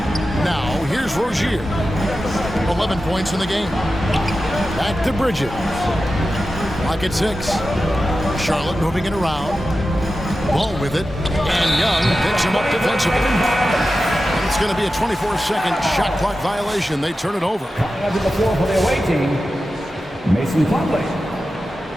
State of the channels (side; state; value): both; normal; correlation 0.93